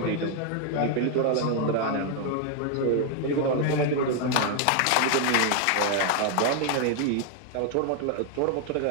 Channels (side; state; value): both; different; correlation 0.00